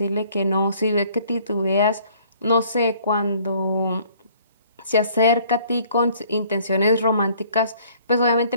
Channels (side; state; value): both; inverted; correlation -0.58